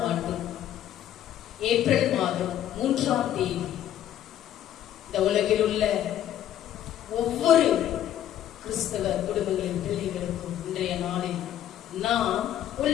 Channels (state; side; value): quieter; right; 11.4 dB